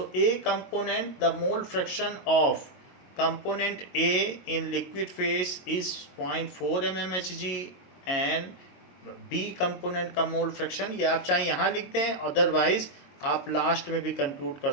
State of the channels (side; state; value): right; late; 22 ms